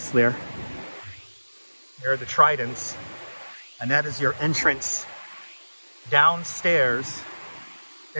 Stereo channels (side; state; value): both; inverted; correlation -1.00